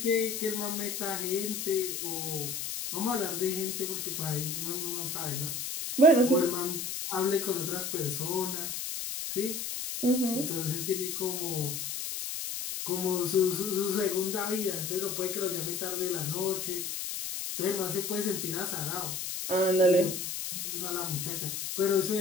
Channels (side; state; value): left; noise; hiss, 4 dB below the sound